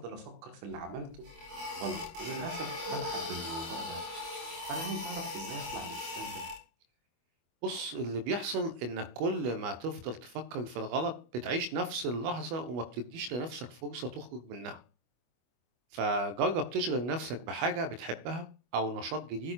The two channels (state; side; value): late; left; 25 ms